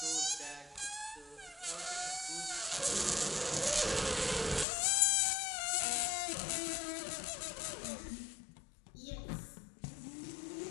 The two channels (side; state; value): right; drops out; at 4.7 s